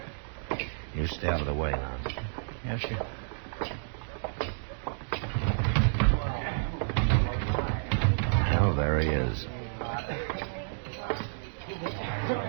You stay out of the way now. Yes, sir. Well, there he is.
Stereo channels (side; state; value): left; silent; digital silence